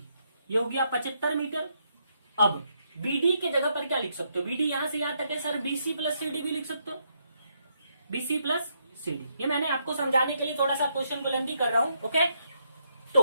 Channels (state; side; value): inverted; both; correlation -0.77